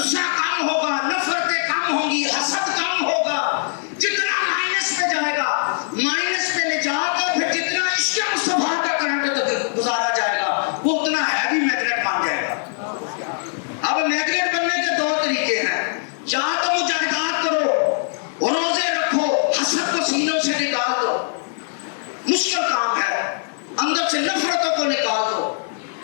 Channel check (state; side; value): silent; right; 65 dB below the other